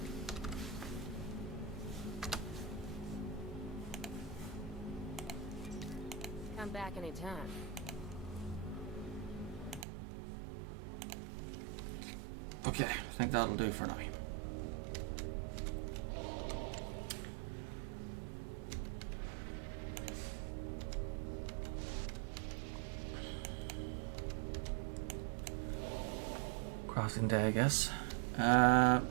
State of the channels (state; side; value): drops out; left; at 9.9 s